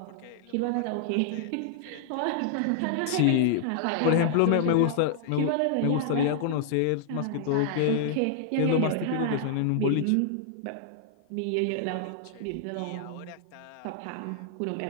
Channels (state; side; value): different; both; correlation -0.01